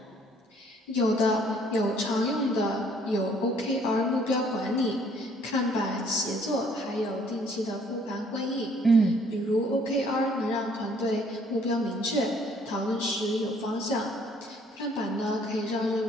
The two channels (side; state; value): both; normal; correlation 0.61